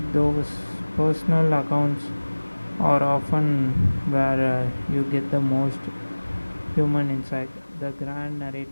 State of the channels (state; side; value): inverted; both; correlation -1.00